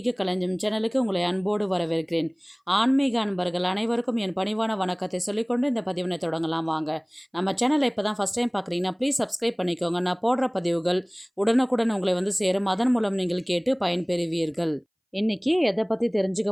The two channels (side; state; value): both; identical; correlation 1.00